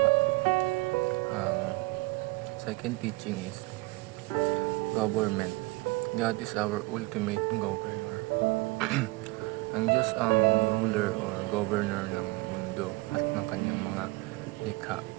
Second teaching is government. God is our ultimate governor. Ang Diyos ang ruler or governor ng mundo at ng kanyang mga likha.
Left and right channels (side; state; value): left; quieter; 22.9 dB